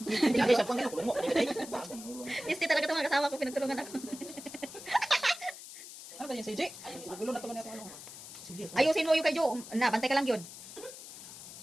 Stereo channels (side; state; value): left; noise; hiss, 14 dB below the sound